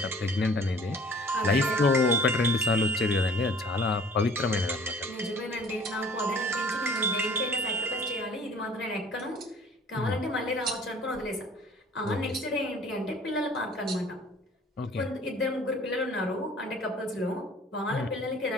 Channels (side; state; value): both; normal; correlation 0.51